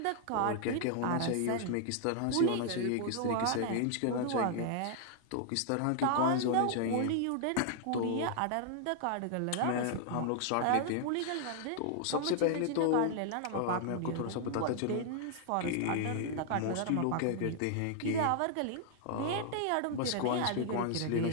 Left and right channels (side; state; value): both; different; correlation 0.00